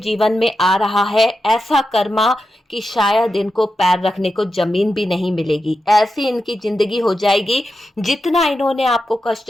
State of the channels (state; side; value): normal; both; correlation 0.89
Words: में आ रहा है ऐसा कर्मा कि शायद इनको पैर रखने को जमीन भी नहीं मिलेगी, ऐसी इनकी जिंदगी हो जाएगी। जितना इन्होंने आपको